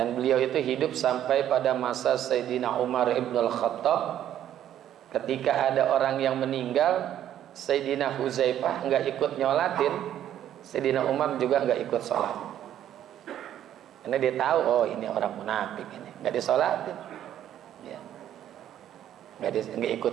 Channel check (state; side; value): quieter; left; 11.1 dB